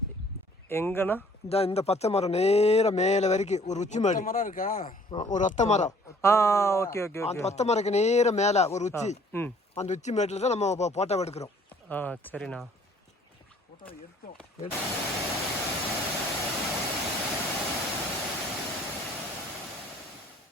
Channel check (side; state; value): both; normal; correlation 0.56